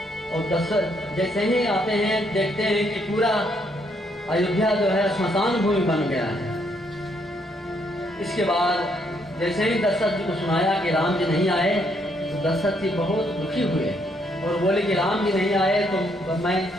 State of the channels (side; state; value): both; normal; correlation 0.72